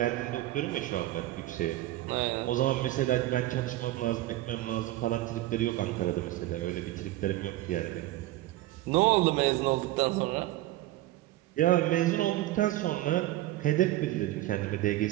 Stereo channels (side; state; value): left; quieter; 16.1 dB